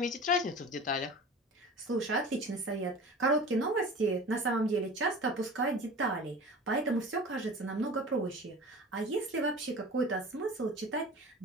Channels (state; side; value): normal; both; correlation 0.37